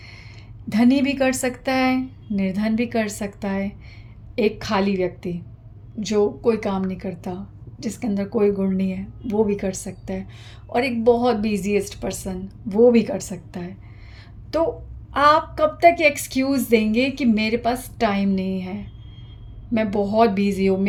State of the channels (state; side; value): identical; both; correlation 1.00